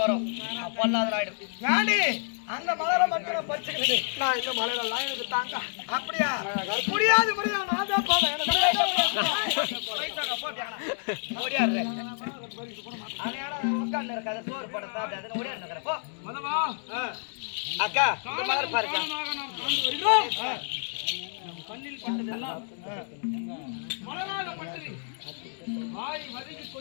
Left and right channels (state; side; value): silent; right; digital silence